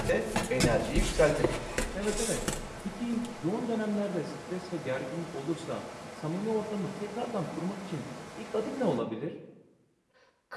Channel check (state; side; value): identical; both; correlation 1.00